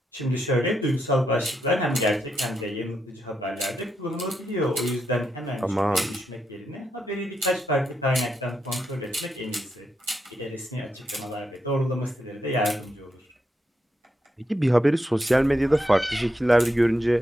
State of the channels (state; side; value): normal; both; correlation 0.82